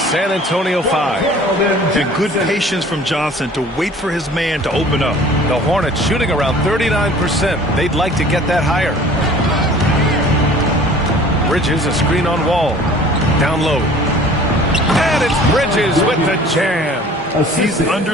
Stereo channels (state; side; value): normal; both; correlation 0.48